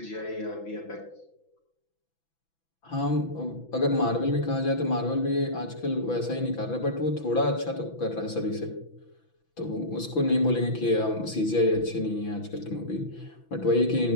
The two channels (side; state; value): right; late; 6.0 ms